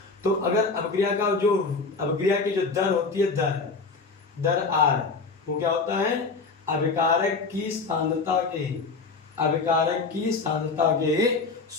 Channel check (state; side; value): quieter; right; 4.2 dB